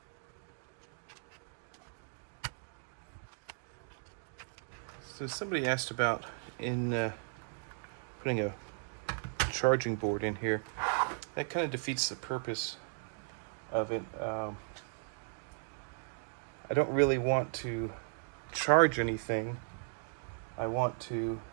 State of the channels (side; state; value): left; silent; digital silence